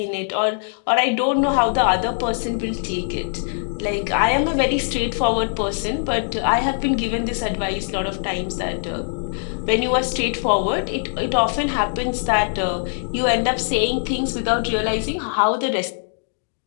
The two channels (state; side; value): silent; right; digital silence